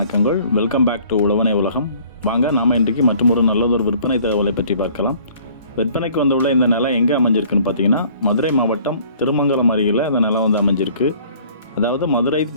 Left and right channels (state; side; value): inverted; both; correlation -0.54